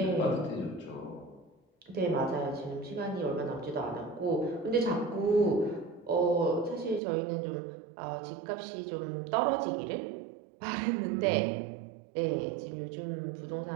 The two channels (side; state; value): left; drops out; at 7.0 s